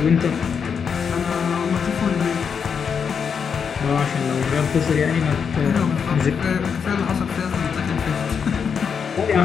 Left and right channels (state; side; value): quieter; right; 6.6 dB